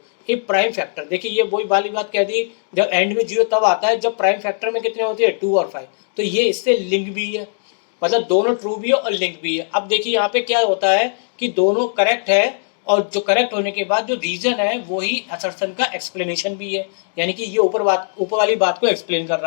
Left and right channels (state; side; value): silent; right; digital silence